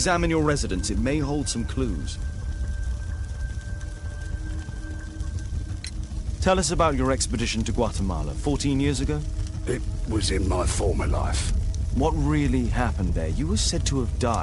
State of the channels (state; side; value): identical; both; correlation 1.00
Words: your residence. It may hold some clues. Tell us about your expedition to Guatemala 14 years ago. It was in my former life. What really happened there? You were said to have